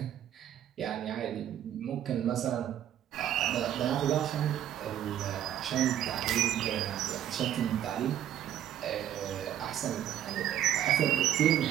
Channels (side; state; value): left; quieter; 10.9 dB